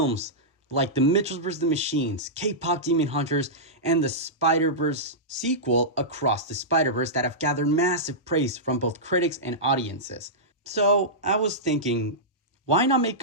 like The Mitchells vs. the Machines, K-Pop Demon Hunters, and the Spider-Verse sequel, Across the Spider-Verse, that have gathered massive praise from both critics and audiences. So I was thinking, why not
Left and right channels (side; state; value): both; normal; correlation -0.13